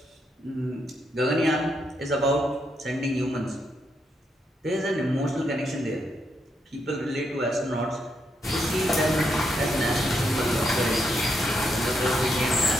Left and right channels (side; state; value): both; normal; correlation 0.79